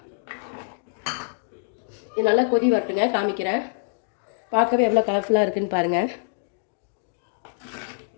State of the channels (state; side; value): silent; right; digital silence